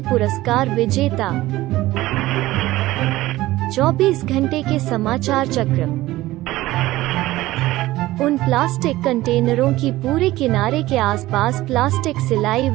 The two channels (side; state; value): left; quieter; 17.1 dB